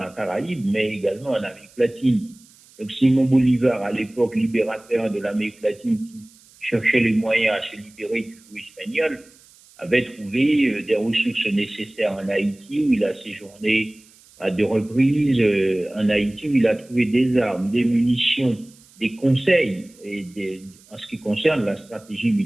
Caraïbe, mais également en Amérique latine. Donc Simon Bolivar, à l'époque libérateur de l'Amérique latine, qui cherchait les moyens à se libérer du joug espagnol, avait trouvé des ressources nécessaires en Haïti, où il a séjourné à deux reprises en Haïti, où il a trouvé des armes, des munitions, des conseils en ce qui concerne la stratégie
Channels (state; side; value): noise; right; hiss, 27 dB below the sound